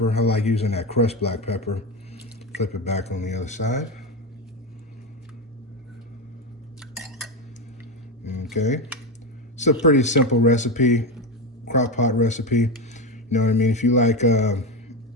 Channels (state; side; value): normal; both; correlation 0.15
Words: I like using that crushed black pepper. Flip it back on the other side. Okay. It's a pretty simple recipe, crock pot recipe. You know what I mean? If you like